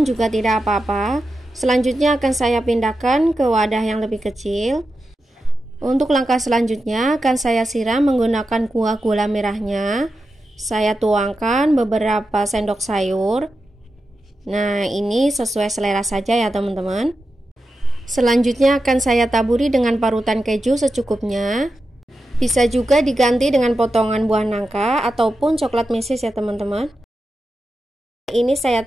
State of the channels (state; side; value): normal; both; correlation 0.90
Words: juga tidak apa-apa. Selanjutnya akan saya pindahkan ke wadah yang lebih kecil. Untuk langkah selanjutnya akan saya siram menggunakan kuah gula merahnya. Saya tuangkan beberapa sendok sayur. Nah, ini sesuai selera saja ya teman-teman. Selanjutnya akan saya taburi dengan parutan keju secukupnya. Bisa juga diganti dengan potongan buah nangka ataupun coklat meses ya teman-teman. Ini saya